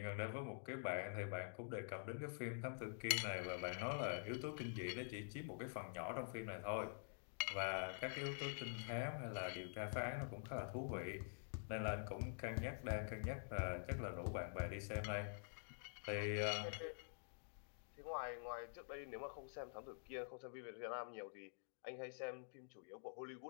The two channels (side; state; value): right; silent; digital silence